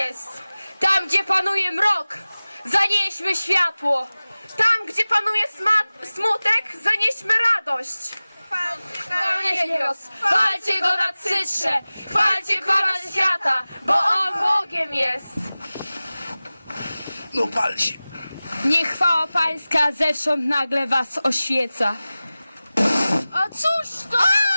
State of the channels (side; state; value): both; inverted; correlation -0.98